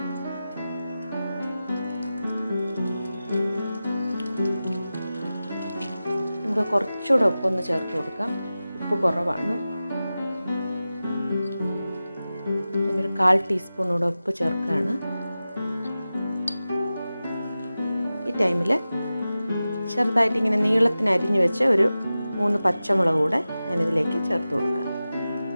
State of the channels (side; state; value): both; inverted; correlation -0.95